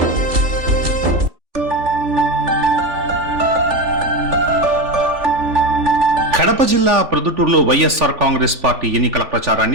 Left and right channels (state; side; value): late; left; 3.4 ms